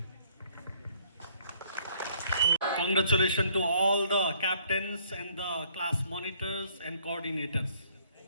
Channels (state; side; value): inverted; both; correlation -0.64